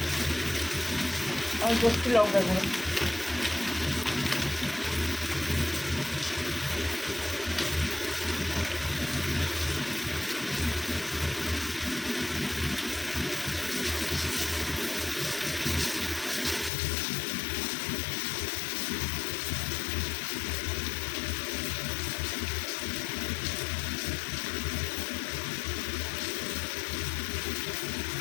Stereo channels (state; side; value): drops out; right; at 16.7 s